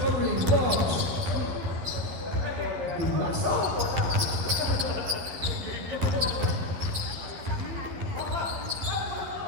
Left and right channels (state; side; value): late; left; 12 ms